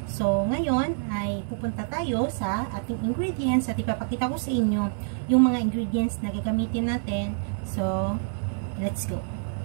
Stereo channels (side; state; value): left; silent; digital silence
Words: So, ngayon ay pupunta tayo sa ating ingredients at ipapakita ko sa inyo yung mga ingredients na gagamitin natin. So, let's go!